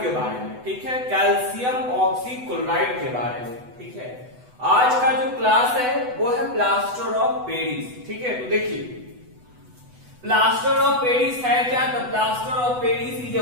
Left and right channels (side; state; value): left; late; 8.0 ms